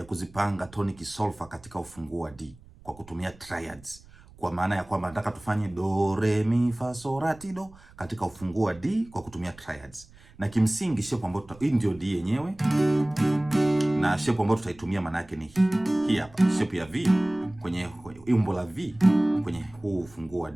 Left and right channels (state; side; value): noise; right; rumble, 23 dB below the sound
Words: kuzipanga tonic solfa katika ufunguo wa D kwa kutumia triads. Kwa maana ya kwamba nataka tufanye do re mi fa so la ti do katika ufunguo wa D kwa kutumia triads. Na kimsingi shape ambayo hii ndio D yenyewe. Na shape ambayo tutaitumia maana yake ni hii hapa. Shape ya V kwenye umbo la V kwenye huu ufunguo wa